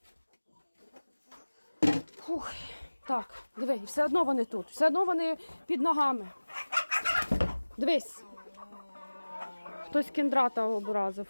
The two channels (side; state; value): both; inverted; correlation -1.00